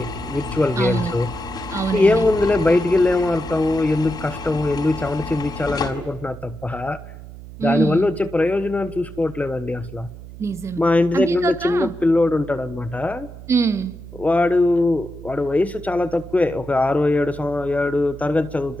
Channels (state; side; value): noise; right; hum, 15 dB below the sound